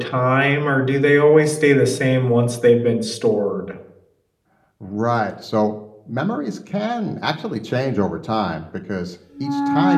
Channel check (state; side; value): identical; both; correlation 1.00